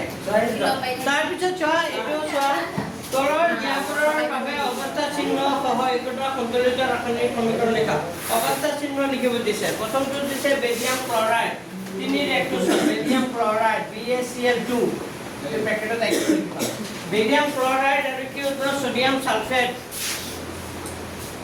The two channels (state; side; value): identical; both; correlation 1.00